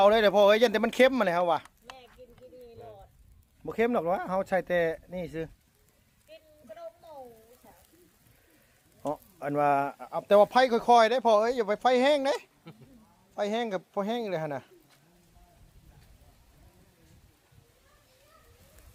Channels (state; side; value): identical; both; correlation 1.00